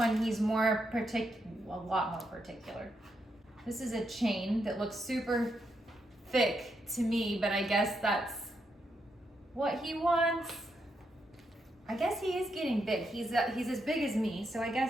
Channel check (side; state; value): both; normal; correlation 0.81